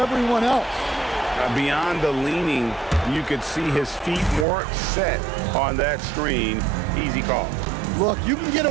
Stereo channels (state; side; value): drops out; left; at 4.5 s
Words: else. Beyond the leaning, you could see his feet weren't set on that screen. Easy call. Look, you can get